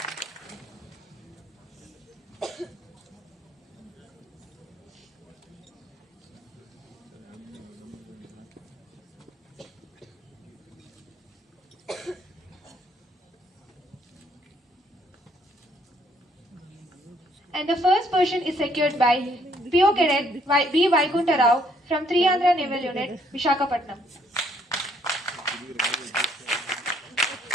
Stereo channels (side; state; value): both; normal; correlation 0.67